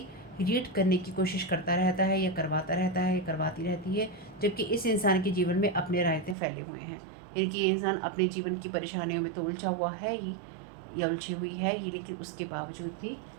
रीड करने की कोशिश करता रहता है या करवाता रहता है या करवाती रहती है, जबकि इस इंसान के जीवन में अपने रायते फैले हुए हैं। यानी कि ये इंसान अपने जीवन की परेशानियों में तो उलझा हुआ है ही या उलझी हुई है ही, लेकिन उसके बावजूद भी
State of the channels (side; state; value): left; drops out; at 6.4 s